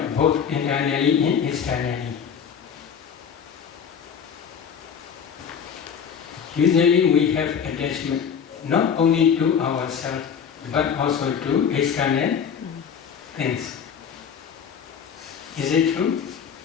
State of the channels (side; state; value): right; quieter; 7.4 dB